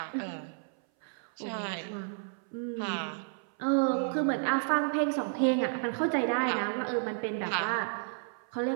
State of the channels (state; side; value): silent; left; 57 dB below the other